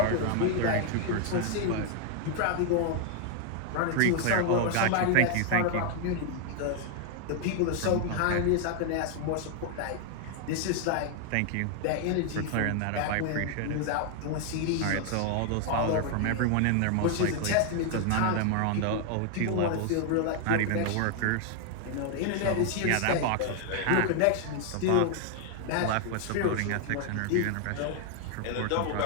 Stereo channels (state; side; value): different; both; correlation 0.00